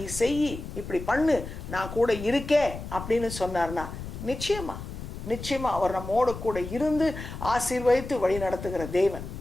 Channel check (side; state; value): left; noise; rumble, 9 dB below the sound